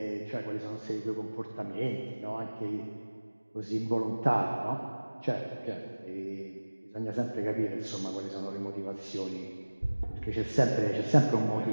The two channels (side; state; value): both; inverted; correlation -1.00